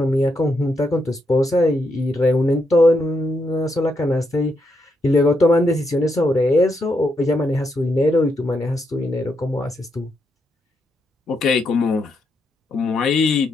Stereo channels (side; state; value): both; normal; correlation 0.80